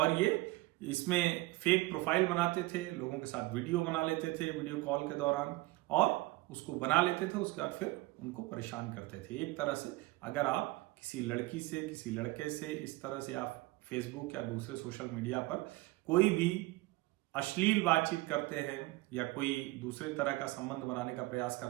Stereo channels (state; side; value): quieter; left; 20.5 dB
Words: ये इसमें फेक प्रोफाइल बनाते थे, लोगों के साथ वीडियो बना लेते थे वीडियो कॉल के दौरान, और उसको बना लेते थे, उसके बाद फिर उनको परेशान करते थे। एक तरह से अगर आप किसी लड़की से, किसी लड़के से इस तरह से आप फेसबुक या दूसरे सोशल मीडिया पर कोई भी अश्लील बातचीत करते हैं या कोई दूसरे तरह का संबंध बनाने का प्रयास